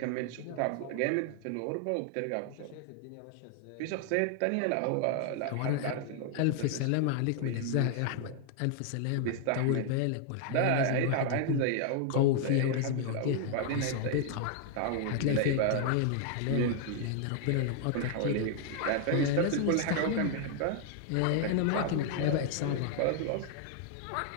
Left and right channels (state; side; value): different; both; correlation 0.00